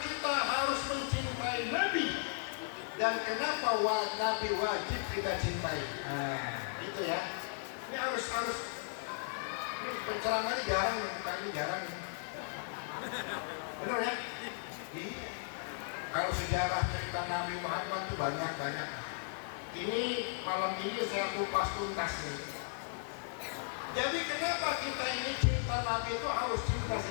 kita harus mencintai Nabi dan kenapa Nabi wajib kita cintai. Itu ya. Ini harus. Ini penceramahnya jarang, bukannya jarang. Benar ya? Iya. Kalau sejarah cerita Nabi Muhammad itu banyak. Ini malam ini saya kupas tuntas nih. Jadi kenapa kita ini cinta Nabi itu harus cinta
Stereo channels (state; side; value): silent; right; 54 dB below the other